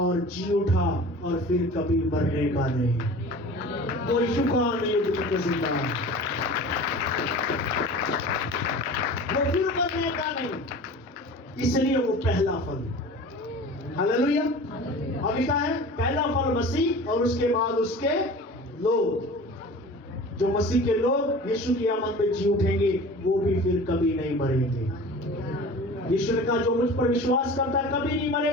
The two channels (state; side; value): normal; both; correlation 0.38